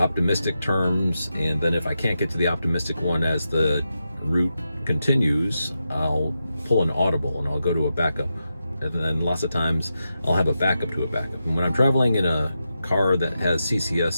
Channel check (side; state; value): both; inverted; correlation -0.88